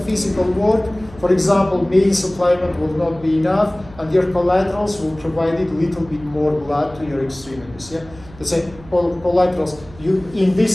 physical work. For example, main supplement will not be enough, and your collaterals will provide a little bit more blood to your extremities. Yeah, Let's say collaterals. In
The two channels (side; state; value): right; noise; hum, 20 dB below the sound